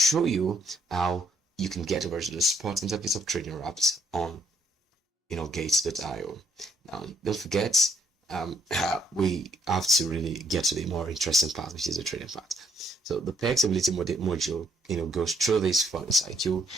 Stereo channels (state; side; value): normal; both; correlation 0.70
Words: you how you can get over to the spot interface of trading Raft on Gates.io. Now, don't forget, we have to really get to the more interesting part, which is the trading part. So the peg stability module, goes through this fun cycle